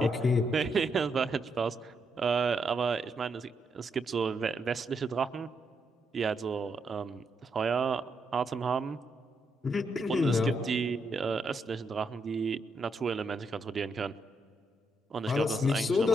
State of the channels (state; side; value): normal; both; correlation 0.79